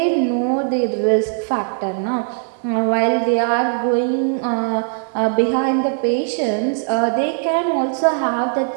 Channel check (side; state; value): left; silent; digital silence